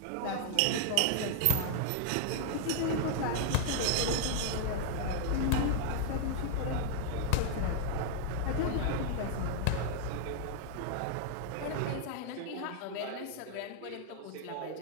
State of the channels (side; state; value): both; different; correlation -0.01